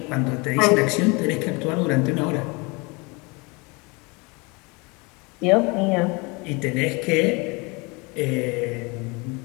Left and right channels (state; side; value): quieter; right; 28.1 dB